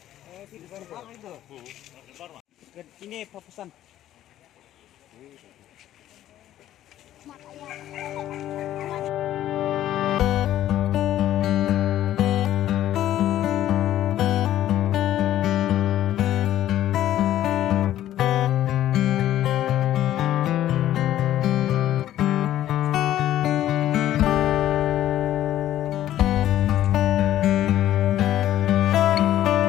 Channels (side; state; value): right; quieter; 12.7 dB